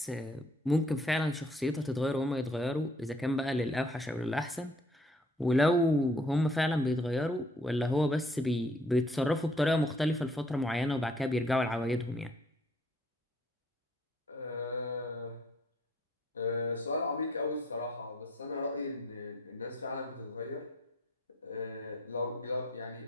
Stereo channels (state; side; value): normal; both; correlation 0.63